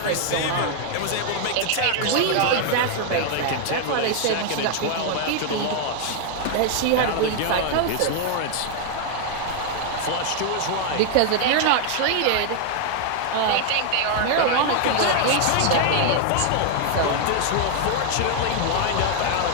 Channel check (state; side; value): different; both; correlation 0.00